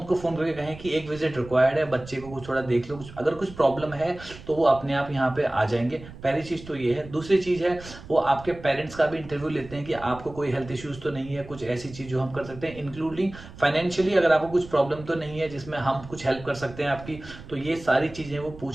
फोन करके कहें कि एक विजिट रिक्वायर्ड है, बच्चे को कुछ थोड़ा देख लो, अगर कुछ प्रॉब्लम है तो वो अपने आप यहाँ पे आ जाएंगे। पहली चीज़ तो ये है। दूसरी चीज़ है, वो आपके पेरेंट्स का भी इंटरव्यू लेते हैं कि आपको कोई हेल्थ इश्यूज तो नहीं है, कुछ ऐसी चीज जो हम कर सकते हैं, इंक्लूडिंग फाइनेंशियली अगर आपको कुछ प्रॉब्लम तो नहीं है जिसमें हम कुछ हेल्प कर सकते हैं आपकी। तो ये सारी चीजें वो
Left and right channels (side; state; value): right; noise; rumble, 16 dB below the sound